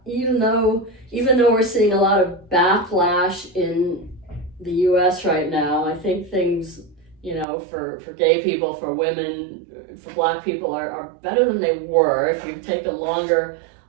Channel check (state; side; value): drops out; left; at 7.5 s